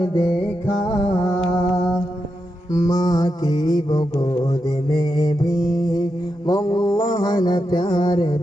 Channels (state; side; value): normal; both; correlation 0.86